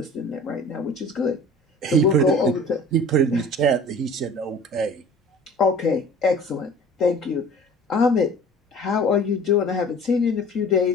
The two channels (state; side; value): normal; both; correlation 0.44